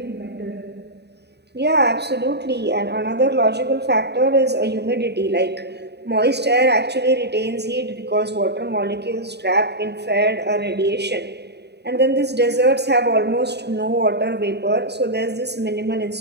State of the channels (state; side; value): late; left; 0.49 ms